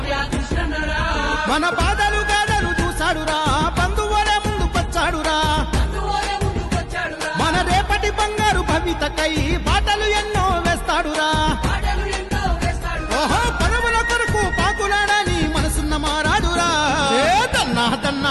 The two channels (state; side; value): identical; both; correlation 1.00